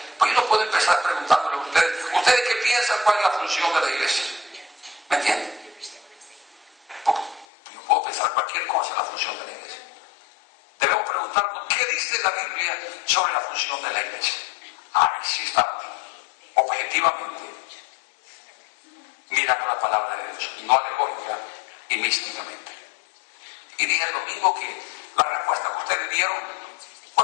pues yo no puedo empezar preguntándole a ¿ustedes qué piensan cuál es la función de la iglesia? ¿Me entienden? Porque yo puedo pensar cualquier cosa en la función de la iglesia. Debemos preguntarnos qué dice la Biblia sobre la función de la iglesia. Ahí sí estamos, objetivamente, mirando la palabra de Dios, no alegórica y místicamente. Y dije el domingo que la respuesta que ustedes dieron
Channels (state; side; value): drops out; right; at 7.5 s